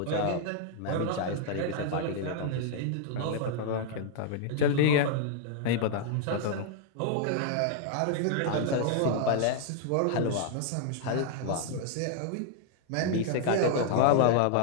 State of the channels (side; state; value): both; different; correlation -0.01